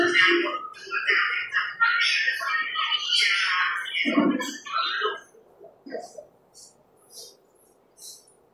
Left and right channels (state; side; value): identical; both; correlation 1.00